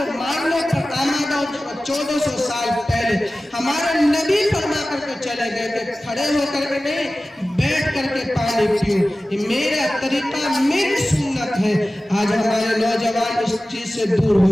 ماننے پر آمادہ ہو چکا. 1400 سال پہلے ہمارے نبی فرما کر کے چلے گئے کہ کھڑے ہو کر کے نہیں, بیٹھ کر کے پانی پیو. یہ میرا طریقہ, میری سنت ہے. آج ہمارے نوجوان اس چیز سے دور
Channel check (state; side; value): normal; both; correlation 0.96